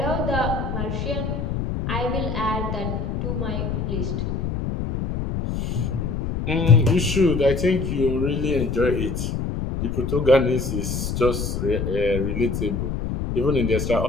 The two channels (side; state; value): left; noise; rumble, 2 dB below the sound